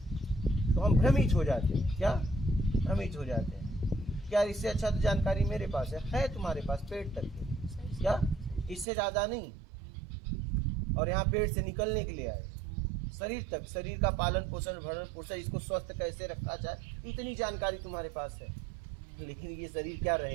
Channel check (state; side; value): drops out; left; at 8.8 s